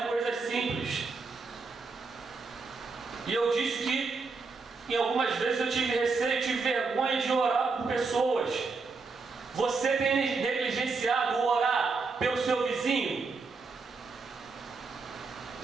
coisas simples. E eu disse que em algumas vezes eu tive receio, tive vergonha de orar por pessoas. Você tem negligenciado o orar pelo seu vizinho?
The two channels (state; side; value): quieter; left; 4.3 dB